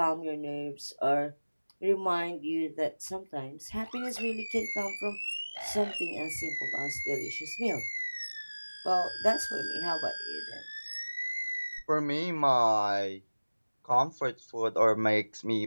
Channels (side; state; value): both; inverted; correlation -1.00